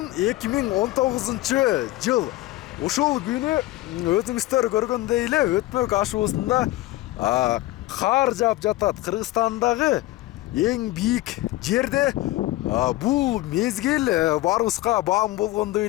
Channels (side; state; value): right; quieter; 17.6 dB